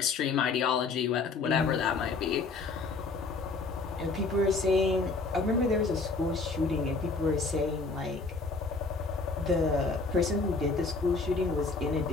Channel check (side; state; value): right; quieter; 4.0 dB